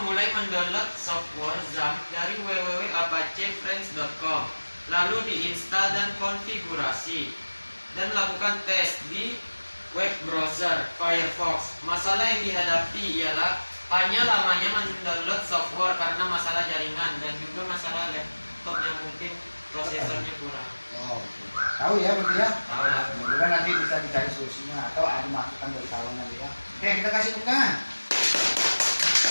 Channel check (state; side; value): inverted; both; correlation -1.00